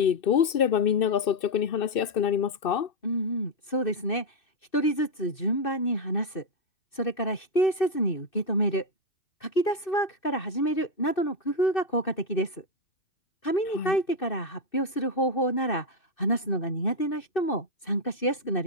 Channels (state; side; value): late; right; 2.6 ms